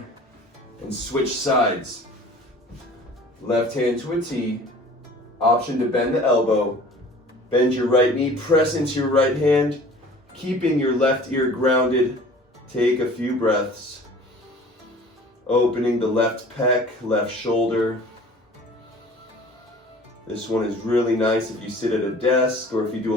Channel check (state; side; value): normal; both; correlation 0.46